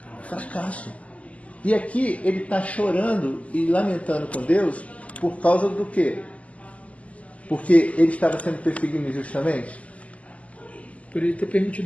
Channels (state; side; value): late; right; 0.068 ms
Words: Fracasso. E aqui ele está chorando e lamentando com Deus por causa do quê? Porque ele estava sendo perseguido injustamente? Por ele ter